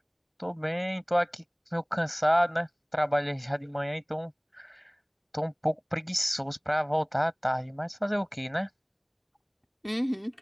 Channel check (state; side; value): identical; both; correlation 1.00